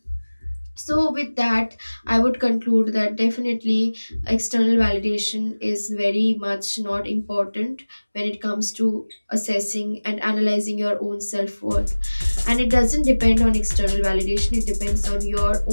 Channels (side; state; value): both; inverted; correlation -1.00